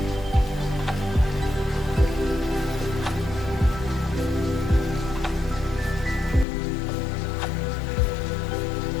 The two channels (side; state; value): right; drops out; at 6.5 s